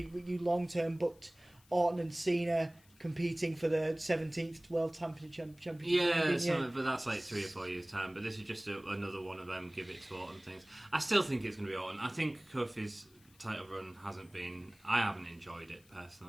long term booked Orton and Cena competing for the 17th World Championship. But that's like 3 or 4 years' time. But this is just another one of them give it to Orton things. I still think it's going to be Orton. I think Kofi's title run I haven't enjoyed it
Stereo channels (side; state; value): left; noise; hiss, 29 dB below the sound